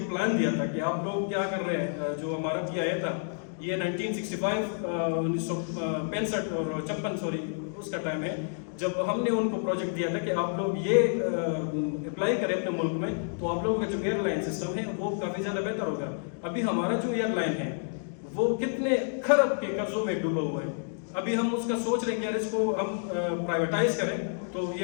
پلان دیا تھا کہ آپ لوگ کیا کر رہے ہیں، جو ہمارا PIA تھا یہ 1965 1965 اور 56 اس کا ٹائم ہے، جب ہم نے ان کو پروجیکٹ دیا تھا کہ آپ لوگ یہ اپلائی کریں اپنے ملک میں، تو آپ لوگوں کا جو ایئر لائن سسٹم ہے وہ کافی زیادہ بہتر ہوگا۔ ابھی ہمارا جو ایئر لائن ہے وہ کتنے خرب کے قرضوں میں ڈوبا ہوا ہے، ابھی ہم اس کا سوچ رہے ہیں کہ یار اس کو ہم پرائیویٹائز کریں تو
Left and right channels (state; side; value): silent; right; digital silence